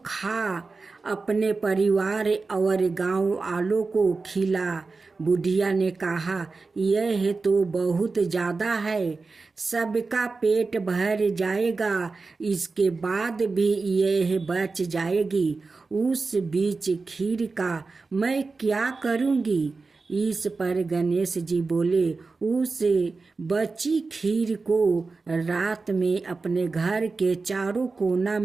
खा, अपने परिवार और गांव वालों को खिला। बुढ़िया ने कहा, यह तो बहुत ज्यादा है, सबका पेट भर जाएगा, इसके बाद भी यह बच जाएगी। उस बीच खीर का मैं क्या करूँगी? इस पर गणेश जी बोले, उस बची खीर को रात में अपने घर के चारों कोना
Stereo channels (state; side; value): quieter; left; 4.1 dB